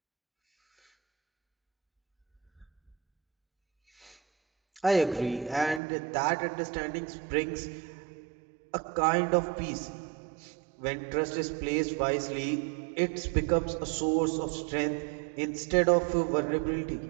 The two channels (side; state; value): left; drops out; at 5.8 s